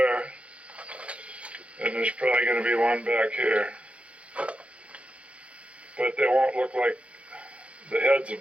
and there's probably going to be one back here. But they won't look like the heads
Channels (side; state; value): left; late; 0.062 ms